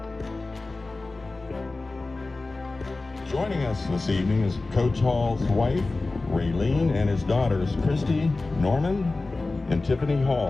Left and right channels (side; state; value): right; quieter; 3.3 dB